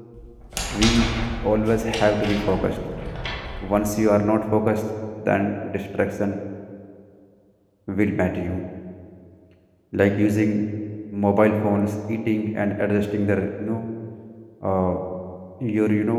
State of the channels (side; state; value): both; identical; correlation 1.00